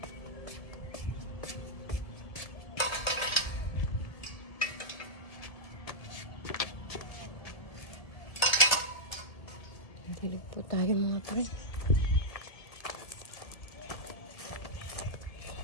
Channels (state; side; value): late; right; 1.8 ms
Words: Dilig po tayo mga pre.